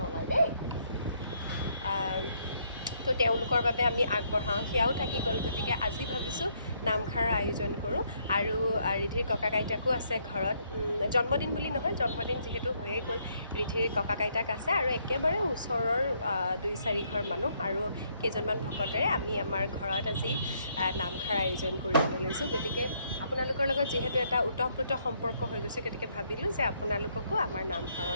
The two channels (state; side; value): inverted; both; correlation -0.71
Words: নলয় দেই। তো তেওঁলোকৰ বাবে আমি আগবঢ়াওঁ, সেয়াও থাকি গ'ল। গতিকে আজি ভাবিছোঁ নামষাৰৰ আয়োজন কৰোঁ। আৰু ৰিধিৰ ককাক আইতাকো আছে ঘৰত, জন্মদিন বুলি নহয়, জন্মদিন যিহেতু হৈয়ে গ'ল, ৰিধিৰ ককাক আইতাক আছে আৰু একেবাৰে ওচৰৰ 2-4 ঘৰ মানুহ আৰু কেইজনমান ভকতেৰে আমি আমাৰ ঘৰত আজি নামষাৰ আয়োজন কৰিবলৈ লৈছোঁ। গতিকে আপোনালোকৰ লগত যিহেতু এটা ওতঃপ্ৰোত সম্পৰ্ক হৈ গৈছে, গতিকে ভাবিলোঁ যে আপোনালোককো আমাৰ